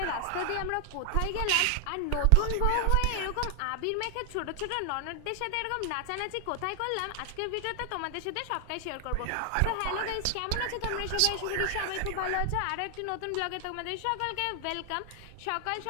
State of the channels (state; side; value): different; both; correlation 0.00